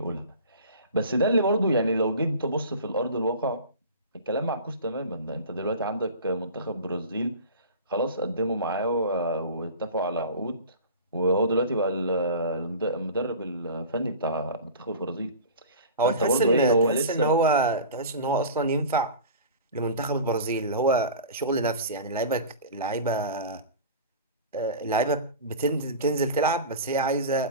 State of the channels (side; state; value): both; inverted; correlation -0.36